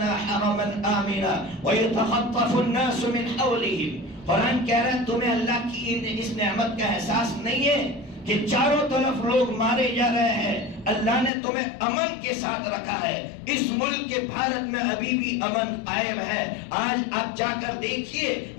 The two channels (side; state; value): right; drops out; at 11.3 s